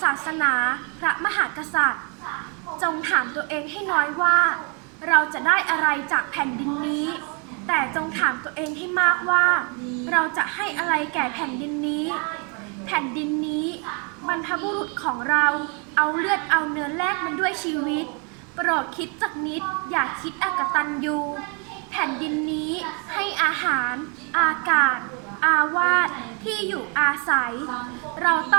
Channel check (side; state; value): left; quieter; 35.6 dB